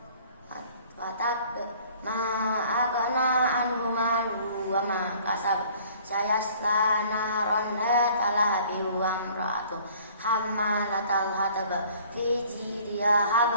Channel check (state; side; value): inverted; both; correlation -0.54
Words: tab ma aghna anhu maluhu wa ma kasab sayasla naran dzata lahab wa imra'atuhu hammalatal hatab fi jidha